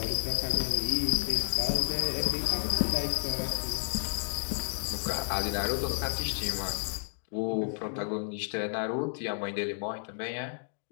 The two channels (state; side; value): silent; right; 57 dB below the other